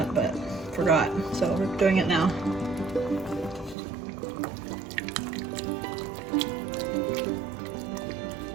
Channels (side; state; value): left; drops out; at 3.8 s